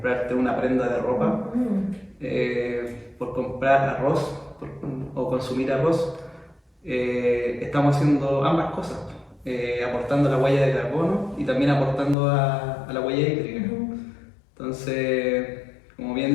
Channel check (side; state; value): right; drops out; at 12.2 s